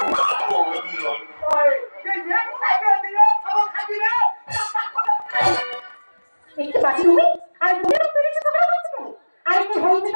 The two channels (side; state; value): both; inverted; correlation -1.00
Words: একটু বাঁচি তুমি আর তুমি পেরেছো তোমরা বলছো কেন? আর কি